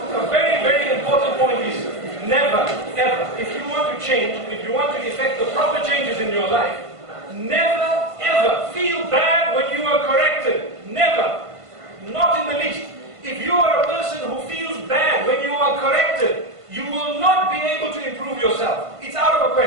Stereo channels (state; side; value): late; left; 1.5 ms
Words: Change, if you want to effect the proper changes in your life, never ever feel bad when you are corrected. Never. Not in the least. If you are a person who feels bad when you are corrected, you will not be able to improve yourself. It's out of a